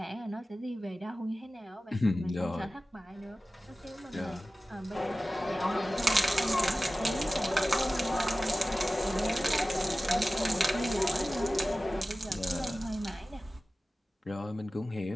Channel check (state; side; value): normal; both; correlation 0.96